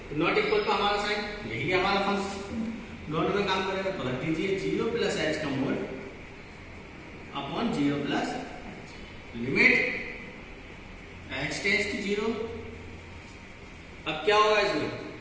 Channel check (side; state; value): both; identical; correlation 1.00